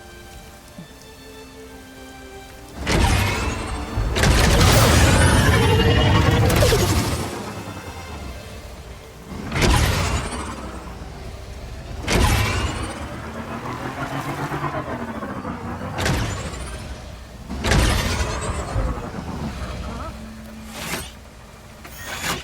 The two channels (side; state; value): both; identical; correlation 1.00